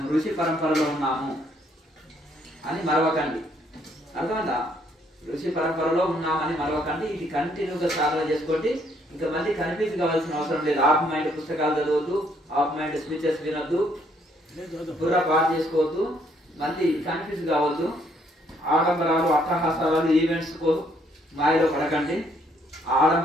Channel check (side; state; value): both; normal; correlation 0.68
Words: ఋషి పరంపరలో ఉన్నాము అని మరవకండి. అర్థమైందా? ఋషి పరంపరలో ఉన్నామని మరవకండి. ఇది కంటిన్యూగా సాధన చేసుకోండి. ఇంకా మళ్ళీ కన్ఫ్యూజ్ కావాల్సిన అవసరం లేదు. ఆఫ్ మైండ్ పుస్తకాలు చదవద్దు, ఆఫ్ మైండ్ స్పీచెస్ వినొద్దు, పూరా పాటు చేసుకోవద్దు, మళ్ళీ కన్ఫ్యూజ్ కావద్దు. ఆడంబరాలు, అట్టహాసాలు, ఈవెంట్స్ మాయలో పడకండి.